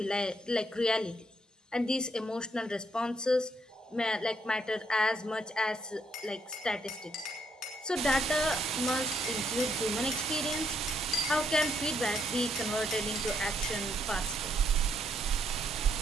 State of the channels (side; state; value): both; normal; correlation 0.73